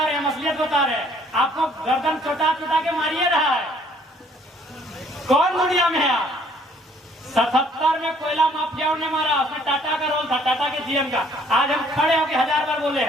रहे हैं, असलियत बता रहे हैं। आपको गर्दन चोटा चोटा के मारिए रहा है। कौन दुनिया में है आप? 77 में कोयला माफियाओं ने मारा, उसमें टाटा का रोल था, टाटा के जीएम का। आज हम खड़े होकर 1000 बार बोले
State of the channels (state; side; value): normal; both; correlation 0.61